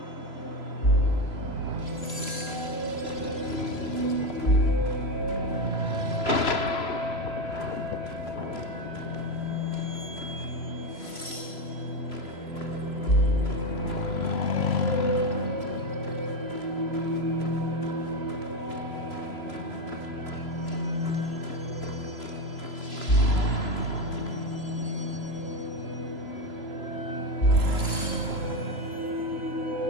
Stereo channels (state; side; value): late; right; 3.0 ms